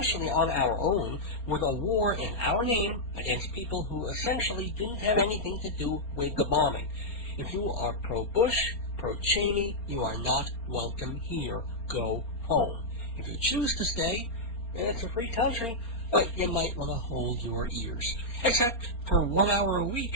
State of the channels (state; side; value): late; right; 4.3 ms